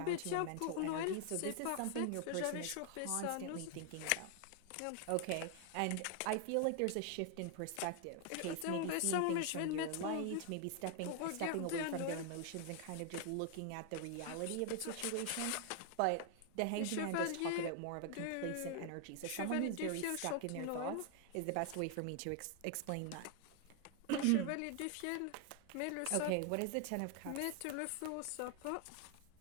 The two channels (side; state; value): both; different; correlation 0.00